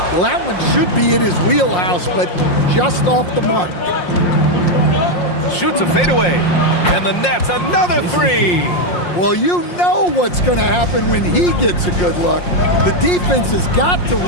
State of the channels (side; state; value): right; late; 5.6 ms